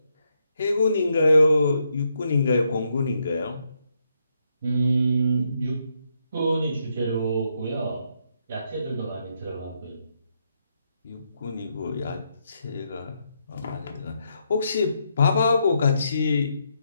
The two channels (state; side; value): inverted; both; correlation -0.79